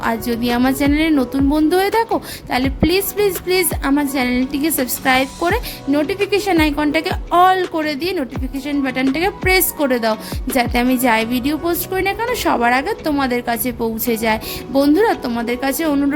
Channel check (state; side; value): identical; both; correlation 1.00